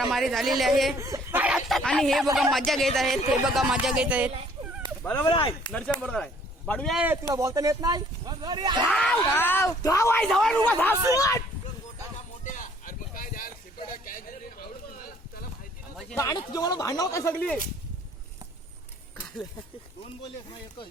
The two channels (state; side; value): normal; both; correlation 0.58